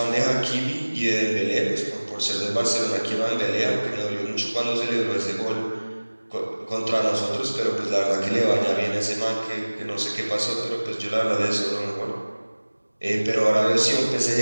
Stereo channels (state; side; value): inverted; both; correlation -1.00